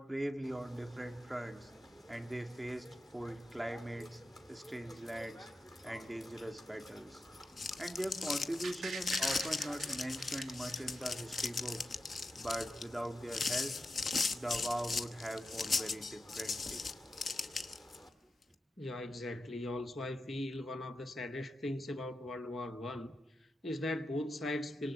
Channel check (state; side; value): normal; both; correlation 0.89